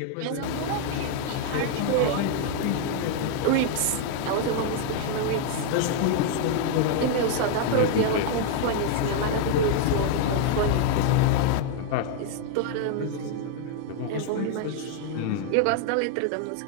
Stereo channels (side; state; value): both; different; correlation 0.00